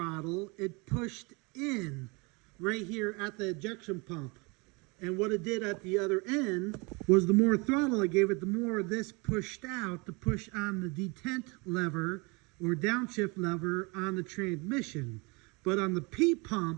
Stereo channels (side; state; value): left; quieter; 28.5 dB